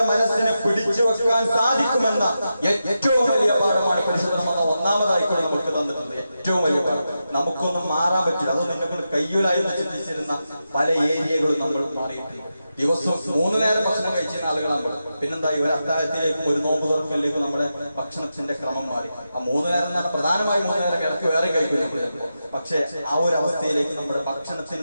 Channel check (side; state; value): both; inverted; correlation -0.89